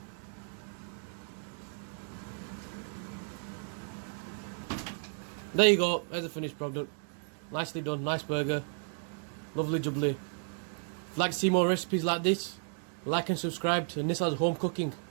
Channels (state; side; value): silent; left; 55 dB below the other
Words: There you go, there's the finished product. Nicely done, nice burger. Lovely jubbly. If you'd like to see more recipes like this, like and subscribe to Nissa's Home Cooking.